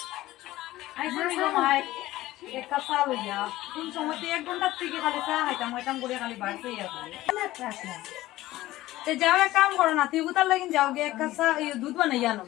এক কাপ চা লইয়া কোন সময় 1 ঘন্টার থেকে খালি চা খাইতাম করে খালি বাড়তে যাও এক কাম করো না তুই কোথার লাগিন যাও গে এক কাপ চা দুধ বানাইয়া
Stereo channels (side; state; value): right; quieter; 16.4 dB